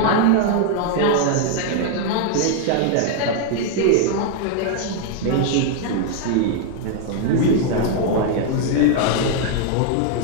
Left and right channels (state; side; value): different; both; correlation 0.00